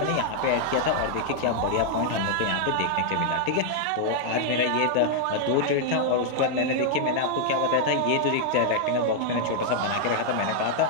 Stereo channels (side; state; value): both; different; correlation -0.01